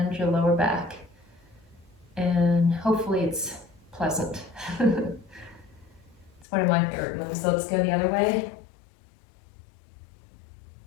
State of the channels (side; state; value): right; drops out; at 6.5 s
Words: your lower back. And hopefully it's pleasant. It's one of my favorite moves. So let's go the other way.